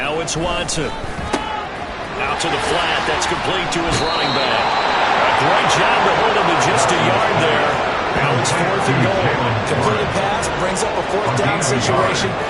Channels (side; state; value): both; identical; correlation 1.00